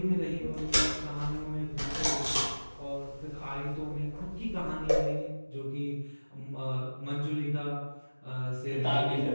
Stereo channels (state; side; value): inverted; both; correlation -1.00